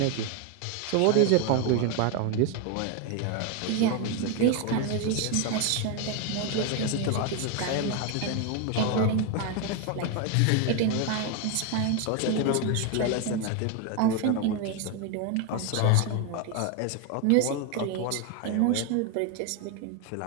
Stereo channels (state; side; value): different; both; correlation 0.01